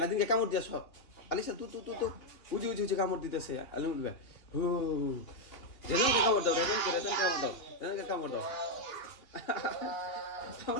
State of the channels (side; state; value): right; late; 2.9 ms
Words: নাদিনকে কামড় দিয়েছ, আলিসা তু উজি কামড় দিতেছে আলিমুল ভাই, হু রেজওয়ানকে কামড় দাও, রেজওয়ানকে কামড় দাও